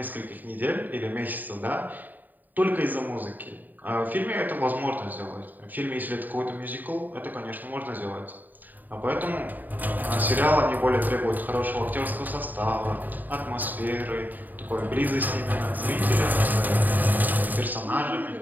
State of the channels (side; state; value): left; late; 0.086 ms